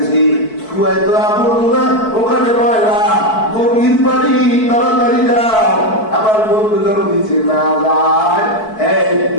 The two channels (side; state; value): right; late; 4.6 ms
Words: কুয়ায় তো আপন না, ওখানে ময়লা গভীর পানি, তাড়াতাড়ি যাও আমার বন্ধু যেন নিচে না যায়।